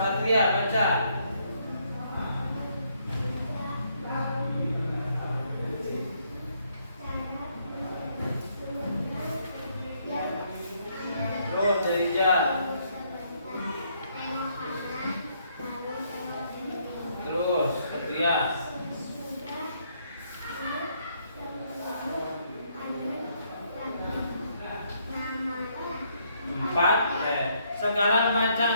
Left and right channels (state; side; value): inverted; both; correlation -0.71